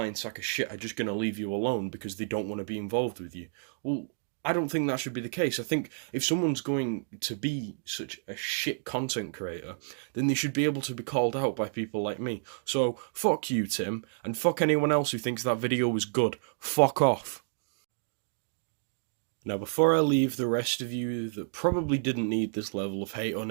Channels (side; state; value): left; silent; digital silence